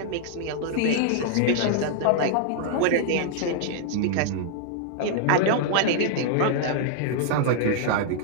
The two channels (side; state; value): both; different; correlation -0.01